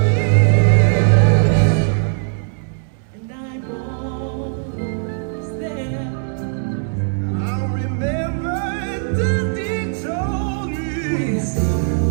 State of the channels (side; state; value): left; silent; 66 dB below the other